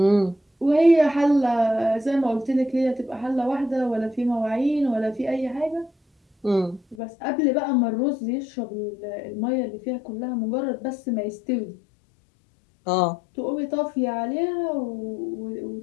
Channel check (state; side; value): drops out; right; at 7.0 s